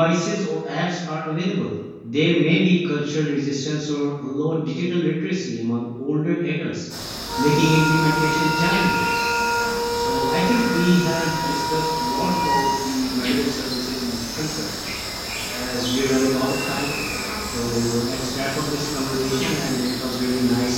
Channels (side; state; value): both; identical; correlation 1.00